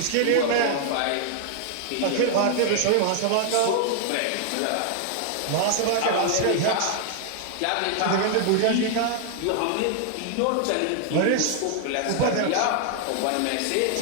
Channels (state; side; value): different; both; correlation 0.00